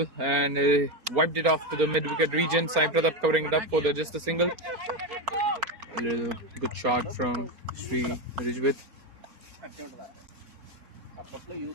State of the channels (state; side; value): late; left; 4.4 ms